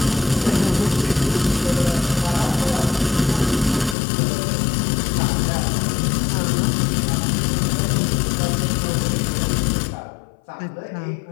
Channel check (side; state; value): right; drops out; at 4.0 s